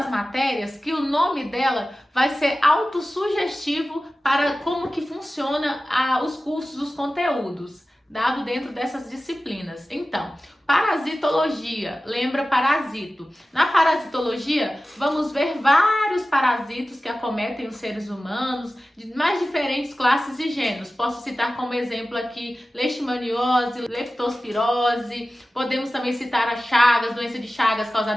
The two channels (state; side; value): normal; both; correlation 0.96